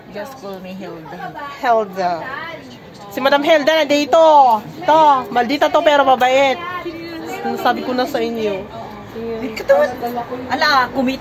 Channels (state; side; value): identical; both; correlation 1.00